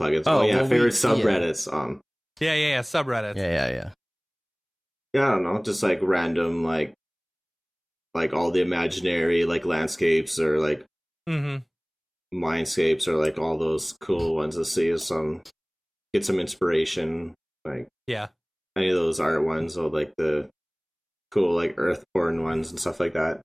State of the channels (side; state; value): both; identical; correlation 1.00